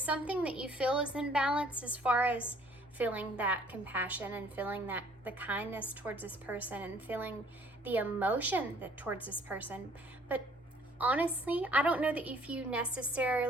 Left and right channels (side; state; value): both; normal; correlation 0.58